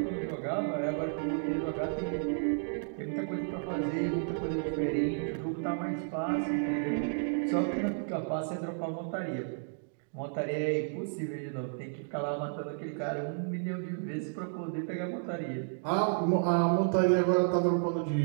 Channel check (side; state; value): left; silent; digital silence